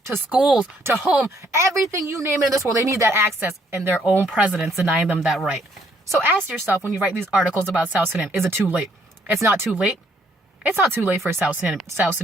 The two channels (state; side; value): normal; both; correlation 0.67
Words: to schools, to home, everything you name it in this world. They need that access, and their own president's denying them that right. So ask yourself when you write these articles about South Sudan, is it too late? It's not too late. It's not too late for South Sudan